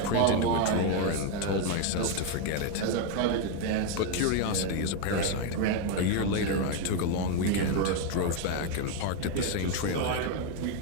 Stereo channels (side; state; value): both; different; correlation 0.01